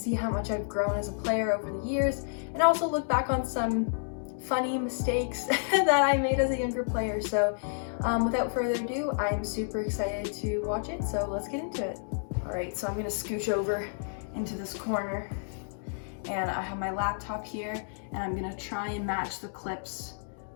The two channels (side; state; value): right; silent; digital silence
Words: how much I've grown as a player over the years, and also look back on some funny mistakes that I made as a younger player. So without further ado, I'm super excited to watch it, so let's get into it. Alright, so I'm gonna scooch over into this corner and I have my laptop here and I'm gonna try and match the clips